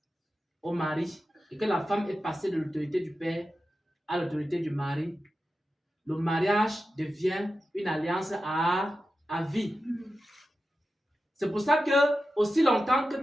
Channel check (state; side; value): normal; both; correlation 0.92